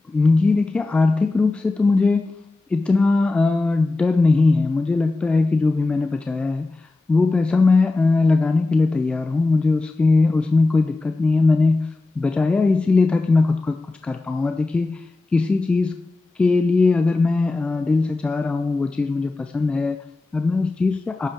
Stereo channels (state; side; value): quieter; right; 3.3 dB